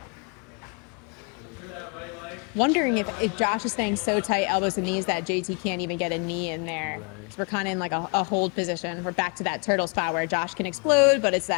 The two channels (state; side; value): quieter; right; 35.4 dB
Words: Wondering if Josh is staying so tight, elbows and knees, that JT can't even get a knee in there. Right. So we're kind of in like a hold position. We're back to that turtle spot where Josh can explode, but it's